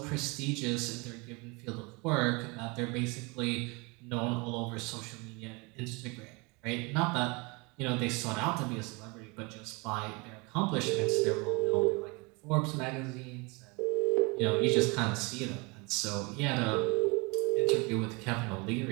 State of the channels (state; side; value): quieter; left; 28.4 dB